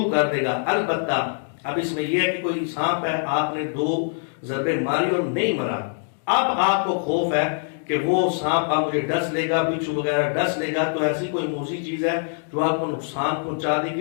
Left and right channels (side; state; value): right; silent; digital silence